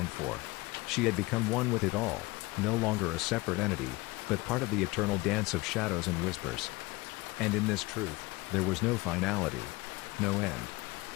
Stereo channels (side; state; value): right; quieter; 22.0 dB